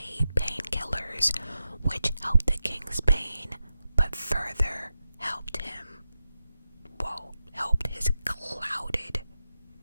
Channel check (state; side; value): inverted; both; correlation -0.90